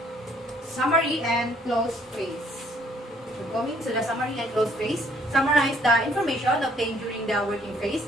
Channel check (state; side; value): normal; both; correlation 0.63